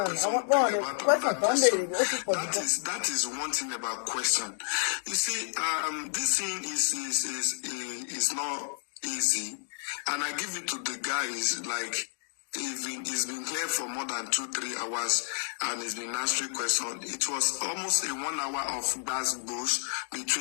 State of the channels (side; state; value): right; silent; digital silence